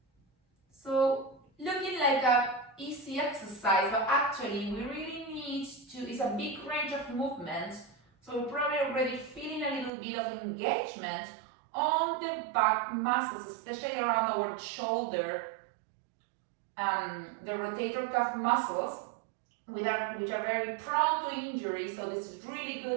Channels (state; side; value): drops out; left; at 9.9 s